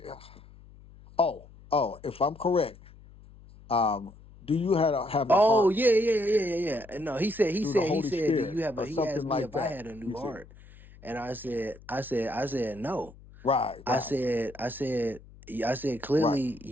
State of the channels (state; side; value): noise; left; hum, 21 dB below the sound